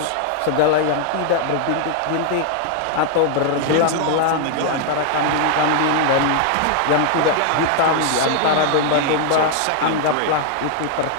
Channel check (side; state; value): both; different; correlation 0.00